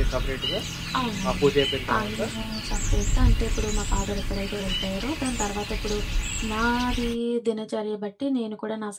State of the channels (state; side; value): identical; both; correlation 1.00